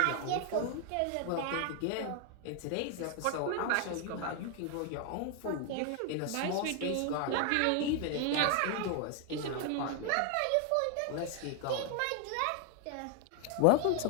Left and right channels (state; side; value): different; both; correlation 0.01